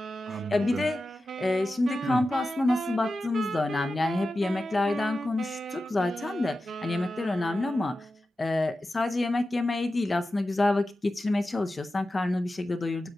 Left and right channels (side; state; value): both; normal; correlation 0.93